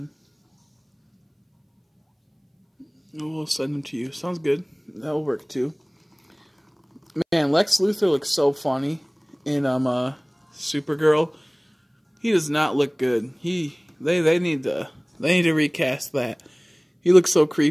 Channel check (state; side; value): identical; both; correlation 1.00